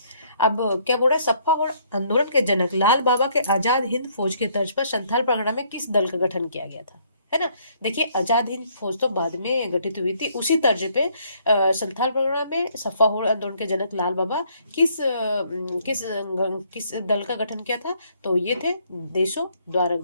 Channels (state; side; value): inverted; both; correlation -0.66